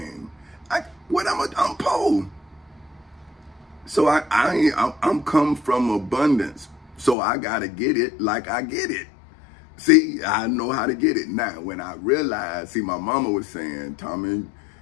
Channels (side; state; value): right; drops out; at 7.2 s